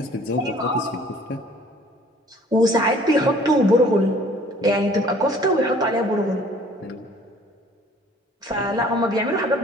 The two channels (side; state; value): both; normal; correlation 0.54